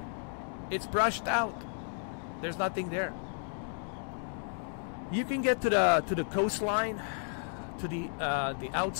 it's brushed out. There's nothing there. You can get to the coastline, to the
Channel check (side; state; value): right; silent; 56 dB below the other